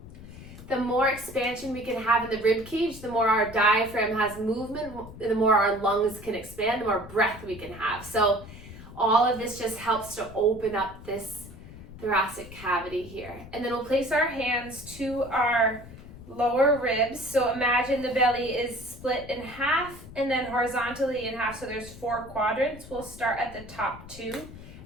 The more expansion we can have in the rib cage, the more our diaphragm has movement, the more our lungs can expand, the more breath we can have. So all of this just helps to open up this thoracic cavity here. And then we'll place our hands to our lower ribs. So imagine the belly is split in half and then horizontally in half. So there's 4 quadrants. We'll start at the top 2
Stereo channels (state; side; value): noise; left; rumble, 15 dB below the sound